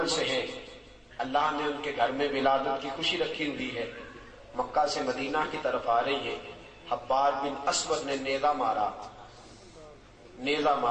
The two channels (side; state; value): both; identical; correlation 1.00